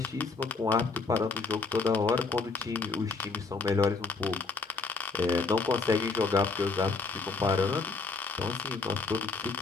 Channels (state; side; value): quieter; right; 4.1 dB